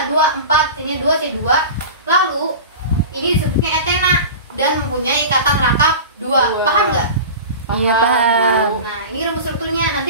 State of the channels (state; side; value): inverted; both; correlation -0.32